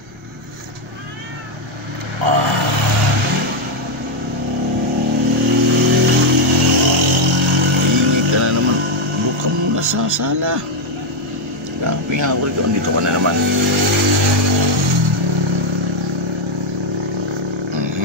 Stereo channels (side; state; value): right; noise; rumble, 26 dB below the sound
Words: Init ka na naman. Buka muna sa sala. Pinahakul ko, andito ka na naman.